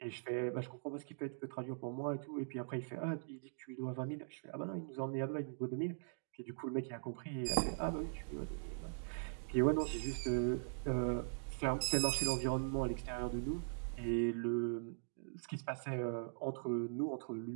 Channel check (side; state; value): left; silent; digital silence